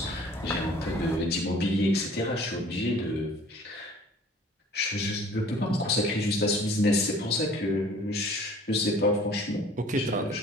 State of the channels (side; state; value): both; normal; correlation 0.51